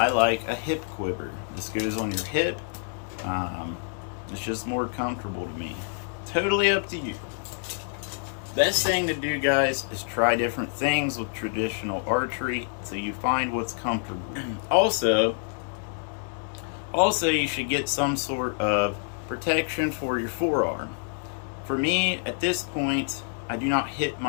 like a hip quiver. This goes on your hip. It's just more comfortable to me. Totally up to you. Best thing to do, guys, is try different things with traditional archery so you find what's comfortable. Also, you should get some sort of protection for your forearm. For me, at this point, I do not hit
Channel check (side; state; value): right; silent; 60 dB below the other